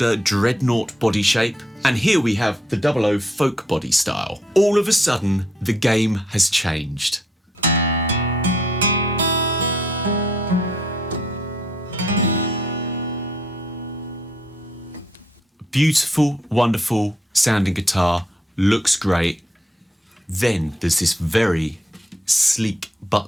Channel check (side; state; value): both; normal; correlation 0.71